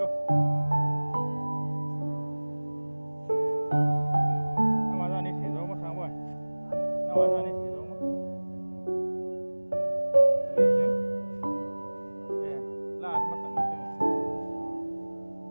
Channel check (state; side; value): inverted; both; correlation -1.00